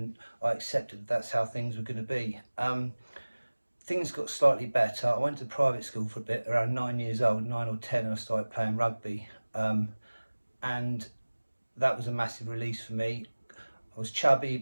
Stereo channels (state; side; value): inverted; both; correlation -1.00